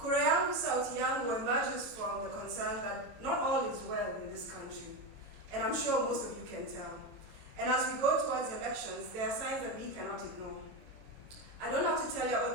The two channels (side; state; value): left; late; 22 ms